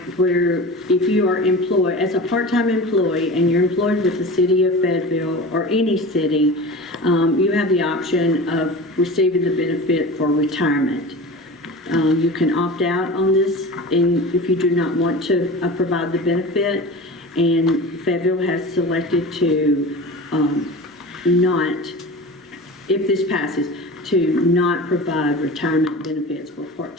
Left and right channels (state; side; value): normal; both; correlation 0.33